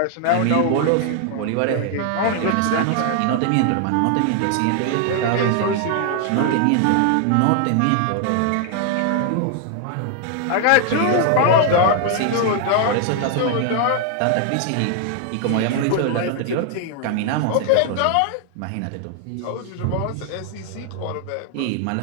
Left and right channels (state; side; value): different; both; correlation 0.00